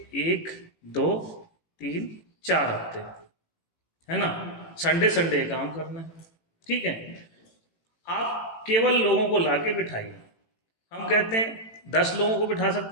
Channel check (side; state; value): right; late; 18 ms